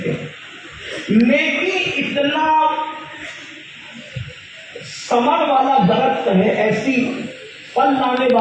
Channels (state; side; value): identical; both; correlation 1.00